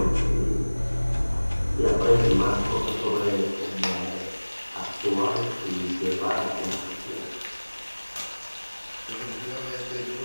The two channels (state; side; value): inverted; both; correlation -1.00